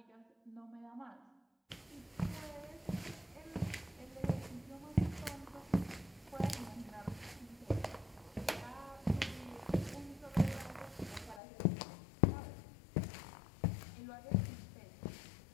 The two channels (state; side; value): drops out; right; at 11.4 s